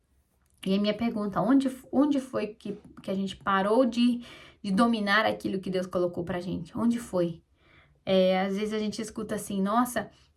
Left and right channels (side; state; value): both; identical; correlation 1.00